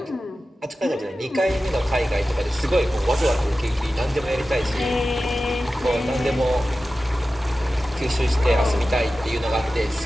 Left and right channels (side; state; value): both; normal; correlation 0.94